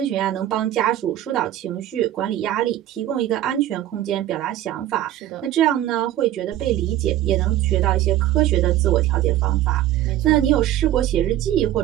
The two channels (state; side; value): quieter; left; 13.0 dB